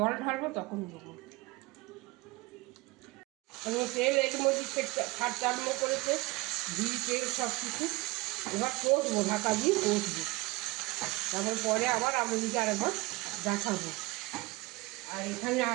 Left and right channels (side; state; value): left; quieter; 22.5 dB